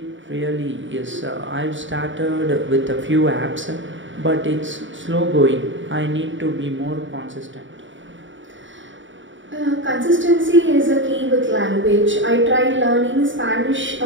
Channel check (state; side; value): late; left; 0.55 ms